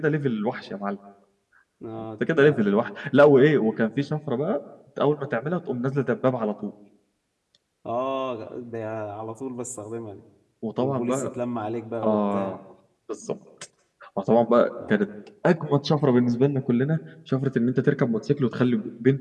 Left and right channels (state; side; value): identical; both; correlation 1.00